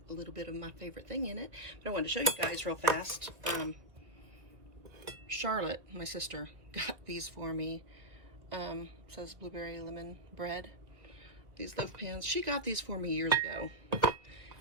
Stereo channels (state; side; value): late; left; 1.7 ms